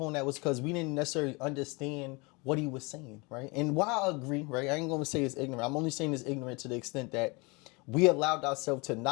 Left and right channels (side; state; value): right; quieter; 27.6 dB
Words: on that was because we didn't necessarily understand what he was saying, right? And while I agree, right, I ain't gonna say it's ignorant. I'm only saying it's ignorant to the extent that we allowed ourselves to